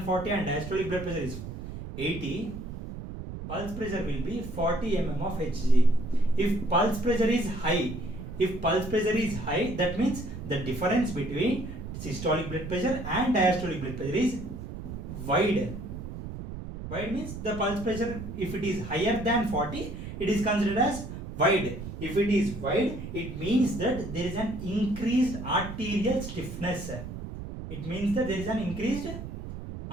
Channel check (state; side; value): noise; right; rumble, 9 dB below the sound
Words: and diastolic blood pressure is 80. Pulse pressure will be 40 mm of Hg. If pulse pressure is high, that means the difference between systolic blood pressure and diastolic blood pressure is wide. Wide means the pulse pressure, if it is higher than 40, it is considered as wide. If it is wide, it means that there is an increased arterial stiffness. It means that there is an increased